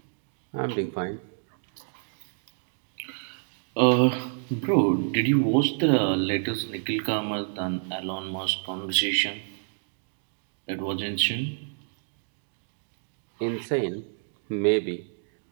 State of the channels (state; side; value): silent; left; digital silence